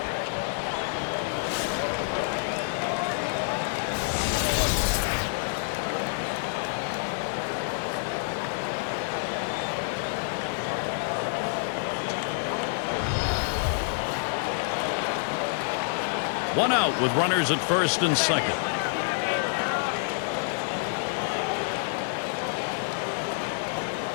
One out with runners at first and second.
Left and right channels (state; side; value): silent; right; digital silence